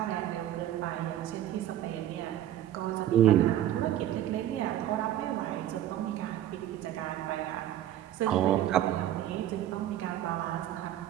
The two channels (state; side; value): quieter; left; 12.2 dB